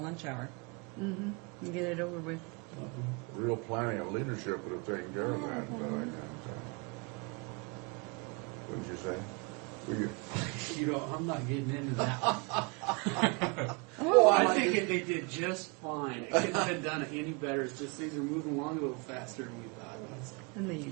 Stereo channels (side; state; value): left; quieter; 31.4 dB